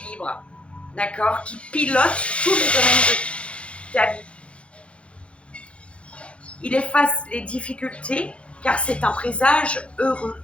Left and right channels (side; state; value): right; late; 0.060 ms